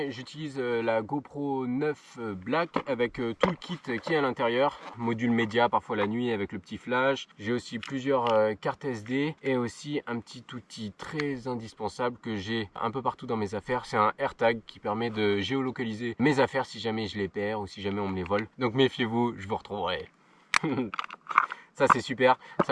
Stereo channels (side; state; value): both; identical; correlation 1.00